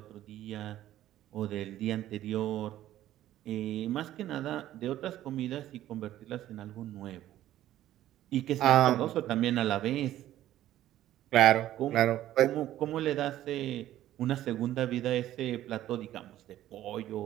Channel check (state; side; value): quieter; left; 13.3 dB